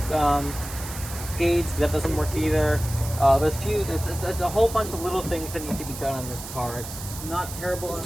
gauge. That doesn't work either. There's a whole bunch of little things that need to be done on this car. It's not terrible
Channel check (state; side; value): noise; right; hiss, 11 dB below the sound